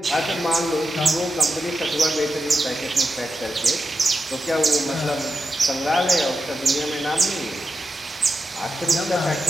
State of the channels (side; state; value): both; normal; correlation 0.89